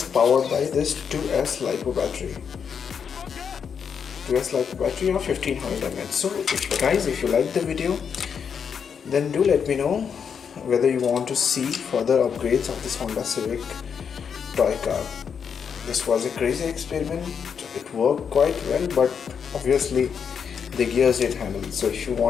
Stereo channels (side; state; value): right; quieter; 6.9 dB